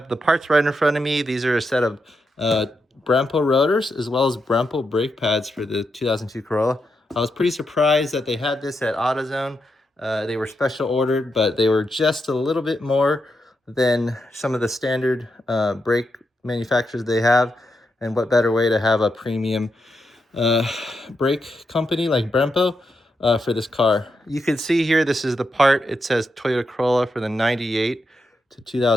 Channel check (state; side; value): normal; both; correlation 0.84